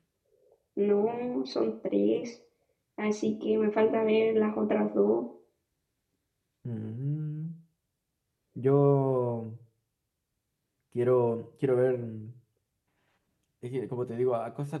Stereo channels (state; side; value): identical; both; correlation 1.00